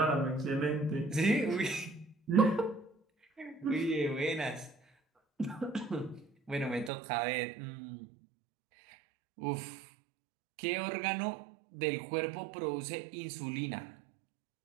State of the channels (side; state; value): left; drops out; at 6.9 s